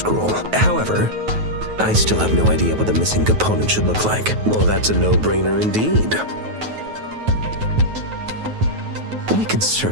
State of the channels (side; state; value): left; late; 9.3 ms